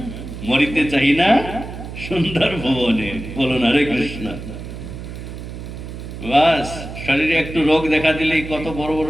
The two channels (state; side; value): noise; right; hum, 10 dB below the sound